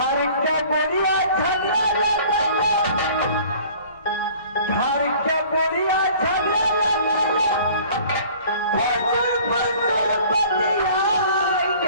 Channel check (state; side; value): inverted; both; correlation -0.50